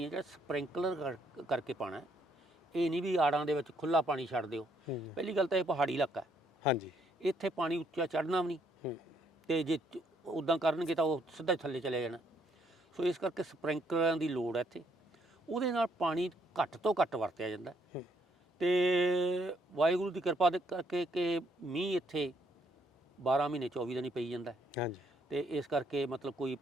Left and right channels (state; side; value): normal; both; correlation 0.70